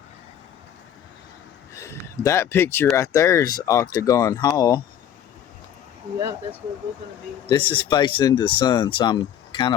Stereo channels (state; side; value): quieter; right; 10.0 dB